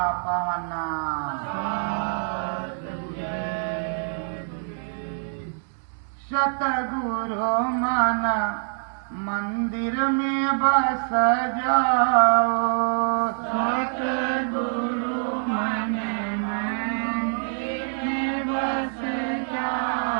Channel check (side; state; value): left; silent; digital silence